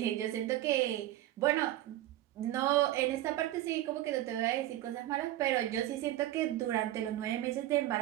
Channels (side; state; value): left; quieter; 14.3 dB